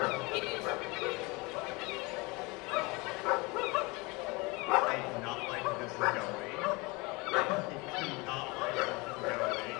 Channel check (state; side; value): quieter; right; 25.9 dB